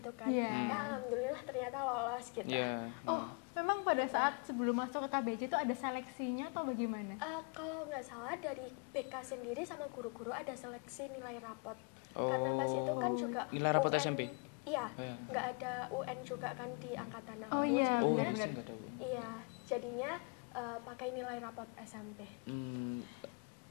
kan." Ya alhamdulillah ternyata lolos gitu. Memang pada saat sebelum masuk ke KBC itu ada seleksinya atau bagaimana? Kalau nggak salah dari BK sendiri sama guru-guru ada seleksi nilai rapot. Karena pas itu kan juga nilai rapot UN, SMP? Iya, nggak ada UN juga kan di angkatan aku, jadinya pakai nilai rapot SMP.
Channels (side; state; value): right; quieter; 34.7 dB